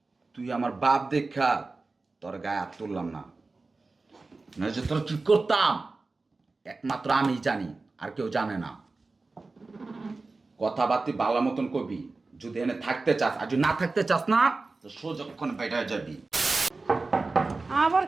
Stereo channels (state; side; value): quieter; left; 3.7 dB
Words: তুই আমার বাপ দেখা তোর গায়ে হাত তুললাম না না যে তোর কি করতাম একমাত্র আমি জানি আর কেউ জানে না কথাবার্তি ভালো মতন কবি যদি এনে থাকতে চাস আর যদি না থাকতে চাস না তো সোজক্ষণ বেটা যাবি আবার